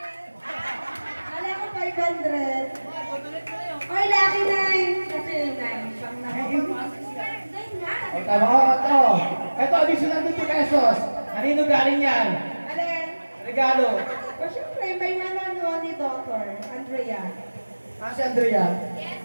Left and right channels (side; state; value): both; inverted; correlation -1.00